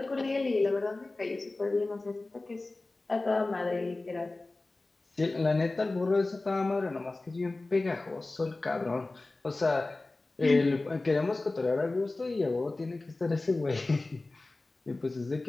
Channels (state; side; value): quieter; right; 3.1 dB